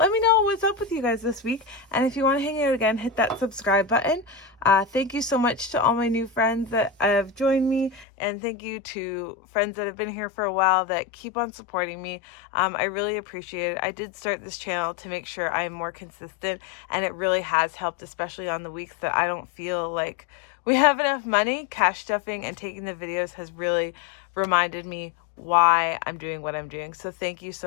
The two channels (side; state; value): right; drops out; at 8.1 s